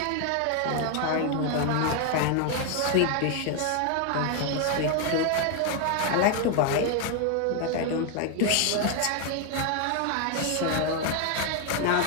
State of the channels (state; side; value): different; both; correlation 0.01